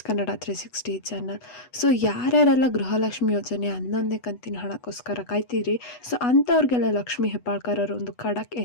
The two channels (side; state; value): right; late; 8.1 ms